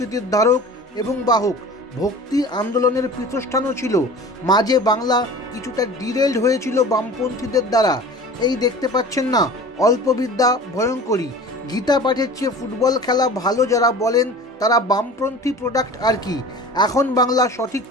ধারক এবং বাহক। ভক্তি আন্দোলনের পীঠস্থানও ছিল। মাঝে বাংলা কিছুটা ডিরেল্ড হয়েছিল বামপন্থীদের দ্বারা। এই দেখতে পাচ্ছেন না, অল্পবিদ্যা ভয়ঙ্করী। গীতা পাঠের চেয়ে ফুটবল খেলা ভালো যারা বলেন তারা বামপন্থী প্রোডাক্ট আর কি। এখন বাংলা সঠিক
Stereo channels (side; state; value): both; normal; correlation 0.40